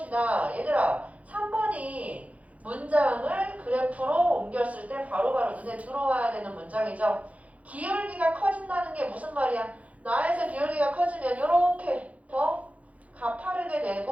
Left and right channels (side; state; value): left; late; 0.067 ms